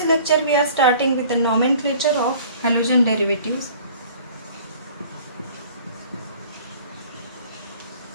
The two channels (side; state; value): both; inverted; correlation -0.49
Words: lecture we are starting with the nomenclature of halogen derivatives.